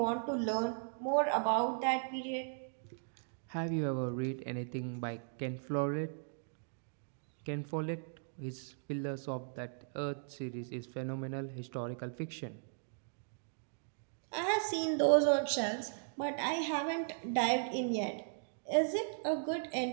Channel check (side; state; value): left; silent; digital silence